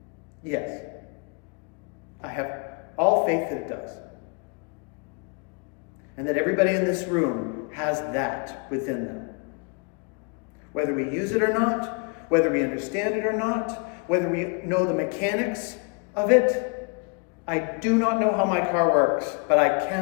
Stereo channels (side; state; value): right; quieter; 35.1 dB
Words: Yes. I have all faith that it does. And that everybody in this room has that within them. Whether we use it or not, whether we understand it or not, whether we know the mechanics of it, I do not know how my car works, but I